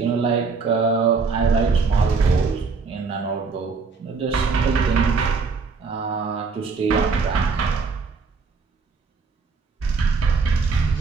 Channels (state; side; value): quieter; left; 4.7 dB